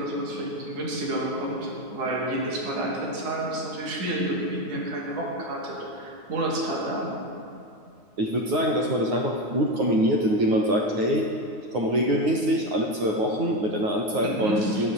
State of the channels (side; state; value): left; late; 9.5 ms